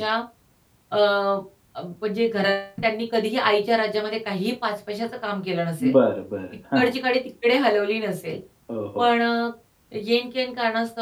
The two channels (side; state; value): both; identical; correlation 1.00